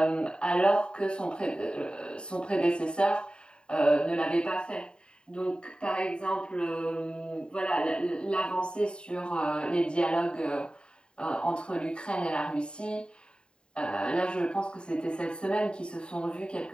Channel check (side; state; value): right; late; 0.050 ms